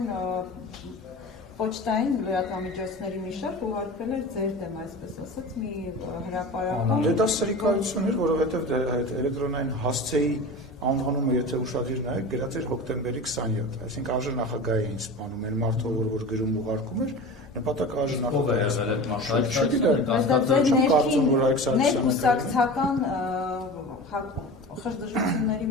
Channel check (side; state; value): both; normal; correlation 0.33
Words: պոչտային լրատվամիջոցների մի շարք ուղարկվել էր ձեր դեմ, այսպես ասած, մի հրապարակում։ Դե դա սրիկայություն էր, որովհետև էլեկտրոնային հասցեի անվանումը, եթե ուշադիր նայեք, գրած էր հոկտեմբերի 27, այսինքն ԱԺ նախագահ էին սպանում, այն մարդը, որ գրում ուղարկում էր, նպատակը ԱԺ նախագահ խժդժությունների